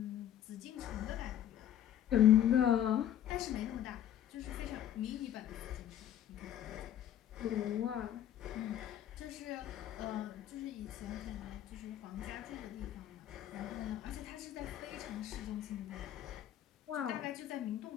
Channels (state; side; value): quieter; right; 11.0 dB